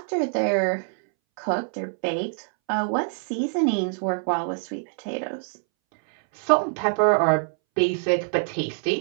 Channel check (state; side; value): silent; left; 62 dB below the other